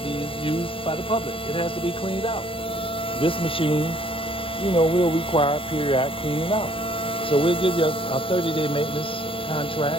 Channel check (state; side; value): late; right; 0.26 ms